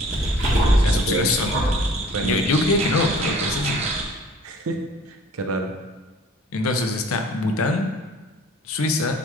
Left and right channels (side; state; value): both; normal; correlation 0.51